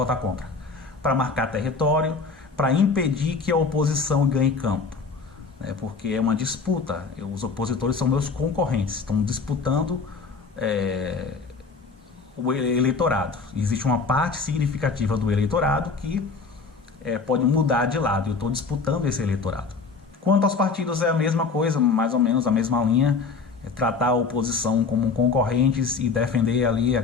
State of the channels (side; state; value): right; quieter; 4.6 dB